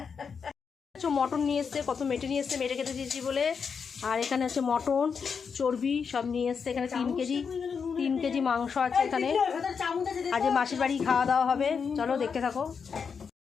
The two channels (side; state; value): right; quieter; 6.1 dB